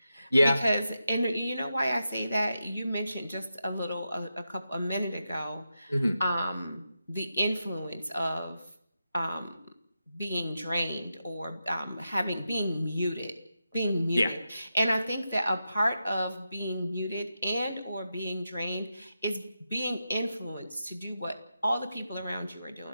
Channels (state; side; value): inverted; both; correlation -0.88